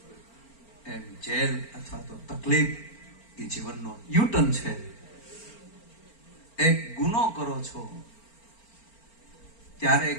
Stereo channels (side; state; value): right; late; 4.4 ms